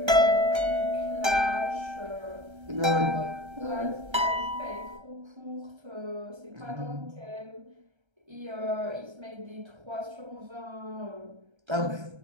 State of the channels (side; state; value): left; late; 1.3 ms